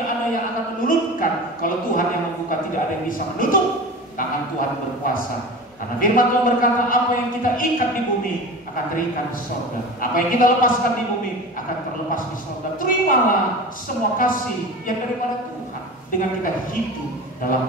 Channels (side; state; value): both; normal; correlation 0.33